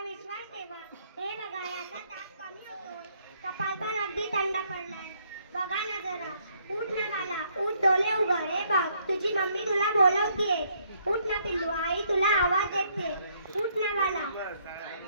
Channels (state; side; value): inverted; both; correlation -0.69